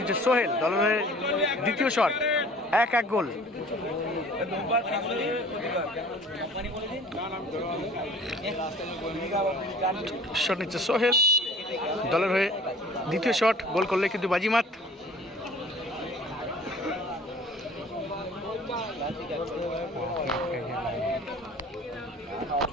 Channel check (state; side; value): normal; both; correlation 0.48